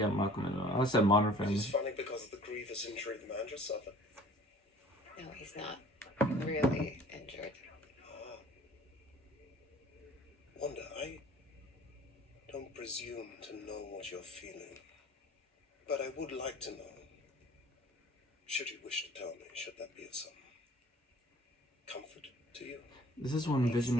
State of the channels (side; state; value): both; normal; correlation 0.51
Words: Malcolm in the Middle. I said Modern Family. It's funny because of the grievous injury the man just suffered. No, he's not really injured. Wanda, I don't presume to know what you're feeling, but I would like to know. Should you wish to tell me, should that be of some comfort to you? This is when